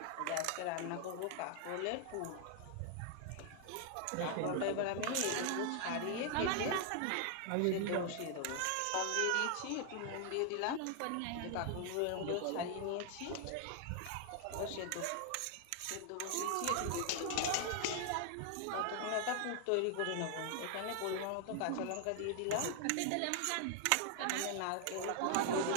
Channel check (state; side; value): different; both; correlation 0.00